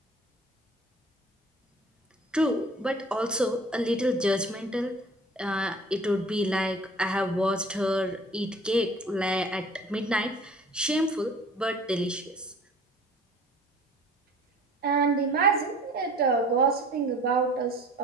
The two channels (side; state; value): both; normal; correlation 0.48